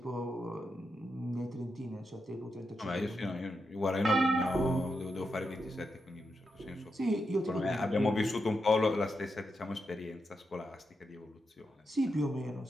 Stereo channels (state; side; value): normal; both; correlation 0.85